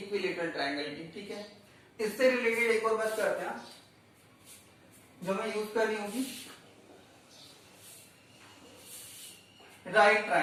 ट्रायंगल की। ठीक है, इससे रिलेटेड एक और बात करते हैं जो मैं यूज कर रही होगी, right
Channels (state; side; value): identical; both; correlation 1.00